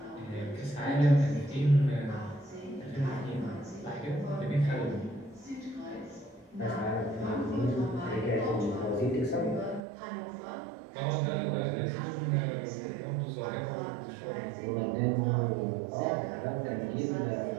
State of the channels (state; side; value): drops out; left; at 9.8 s